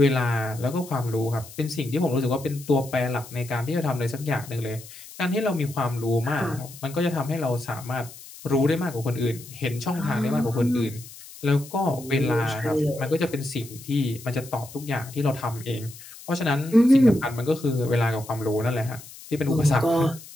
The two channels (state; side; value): noise; left; hiss, 17 dB below the sound